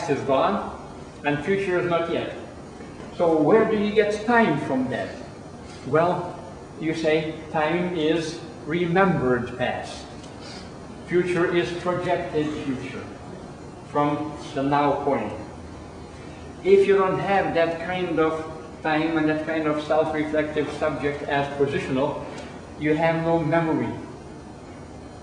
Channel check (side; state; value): both; identical; correlation 1.00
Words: is gone and future is not yet. So where do you get time from that? Well, you say time is remembered past. Future is projected future from the now point. If you don't have that kind of time and that kind of self-reflective subject as positional, you have no memory.